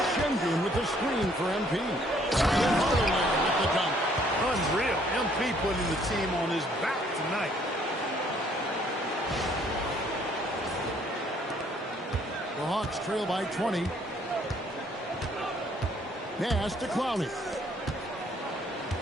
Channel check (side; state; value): both; normal; correlation 0.63